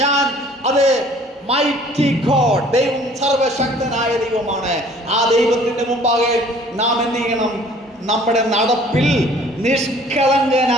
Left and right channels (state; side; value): normal; both; correlation 0.53